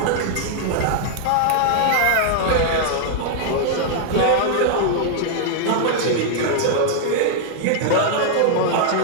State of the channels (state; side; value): different; both; correlation -0.01